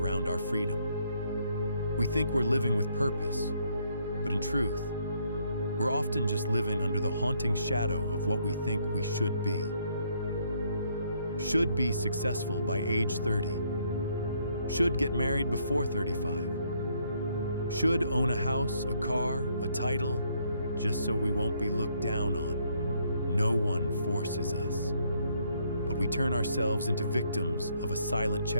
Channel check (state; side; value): inverted; both; correlation -0.70